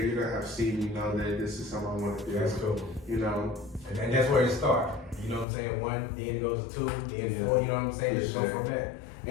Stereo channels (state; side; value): drops out; right; at 5.5 s